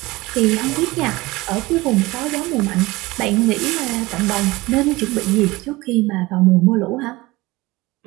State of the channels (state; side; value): quieter; left; 20.9 dB